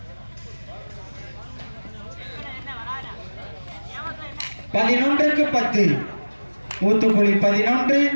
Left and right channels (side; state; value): both; inverted; correlation -1.00